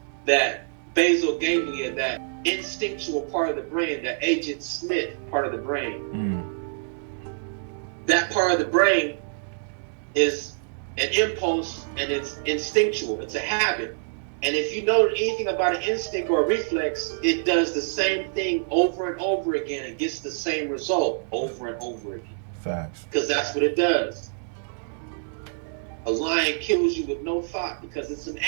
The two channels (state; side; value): silent; left; digital silence